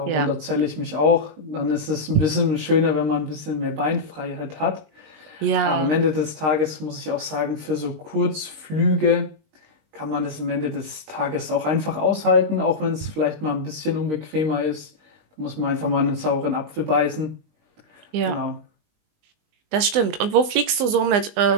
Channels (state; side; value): late; left; 19 ms